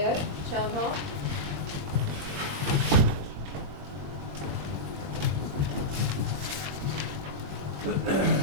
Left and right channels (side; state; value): left; late; 22 ms